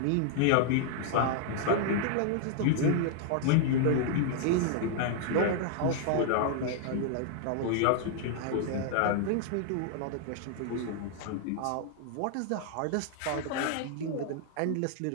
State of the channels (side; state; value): both; different; correlation 0.00